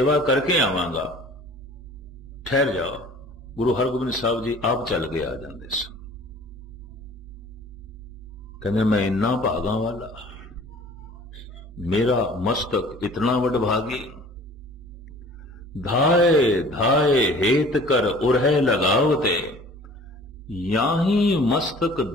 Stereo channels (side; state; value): both; normal; correlation 0.48